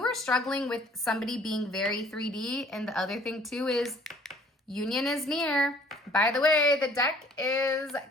are struggling with somebody being very 3D, and the other thing too is union is near. By the way, the deck is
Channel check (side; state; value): both; normal; correlation 0.56